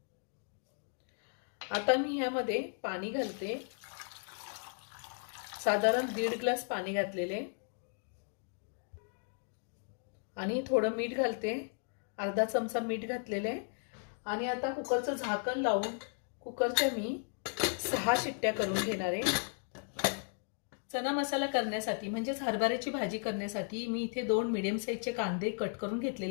आता मी ह्यामध्ये पाणी घालते, साधारण 1.5 ग्लास पाणी घातलेले आणि थोडं मीठ घालते, अर्धा चमचा मीठ घातलेले आणि आता कुकरचं झाकण लावून कुकरच्या मी 6 शिट्ट्या करून घेणार आहे। चना मसाला करण्यासाठी म्हणजेच हरभऱ्याची भाजी करण्यासाठी मी इथे 2 मीडियम साईजचे कांदे कट करून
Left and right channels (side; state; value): right; silent; 54 dB below the other